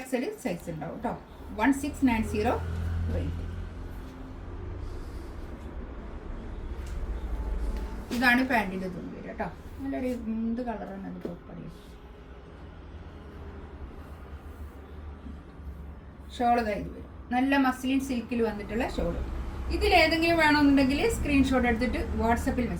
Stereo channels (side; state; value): both; identical; correlation 1.00